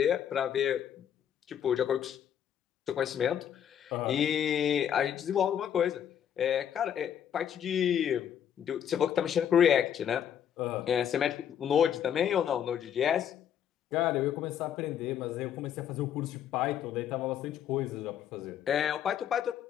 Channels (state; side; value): quieter; right; 9.2 dB